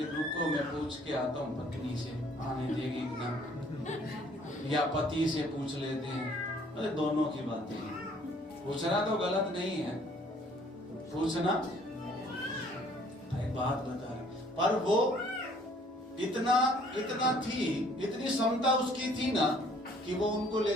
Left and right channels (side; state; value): both; normal; correlation 0.59